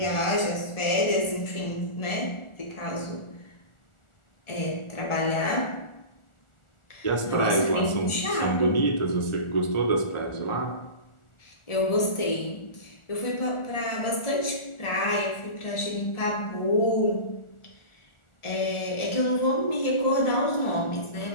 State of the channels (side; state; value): right; late; 1.4 ms